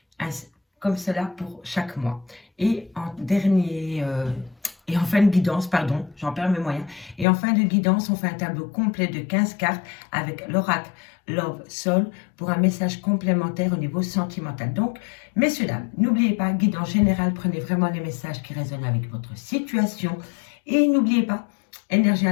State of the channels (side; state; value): right; drops out; at 7.2 s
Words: Comme cela pour chaque mois. Et en et en fin de guidance, pardon, j'en perds mes moyens. Et en fin de guidance, on fait un tableau complet de 15 cartes avec l'oracle Love Soul pour un message complémentaire au niveau sentimental. Donc, messieurs, dames, n'oubliez pas, guidance générale, prenez vraiment les messages qui résonnent avec votre situation. Et n'oubliez pas, énergie